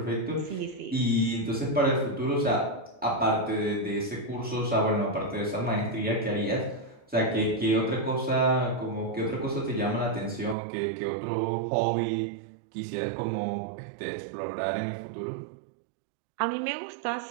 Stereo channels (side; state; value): left; drops out; at 10.6 s